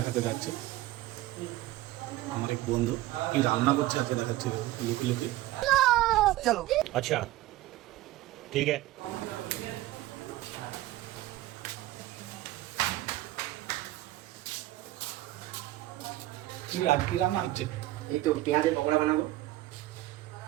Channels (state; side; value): quieter; left; 16.4 dB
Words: যাচ্ছি। আমার এক বন্ধু কি রান্না করছে আজকে দেখাচ্ছি, লুকি লুকি। चलो अच्छा ठीक है। কি আজ কি রান্না হচ্ছে? এই তো পেঁয়াজের পকোড়া বানাবো।